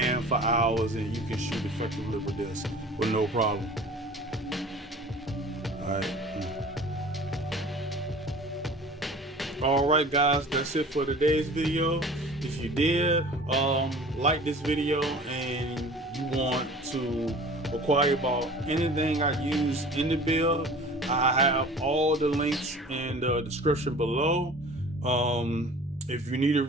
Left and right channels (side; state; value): both; normal; correlation 0.43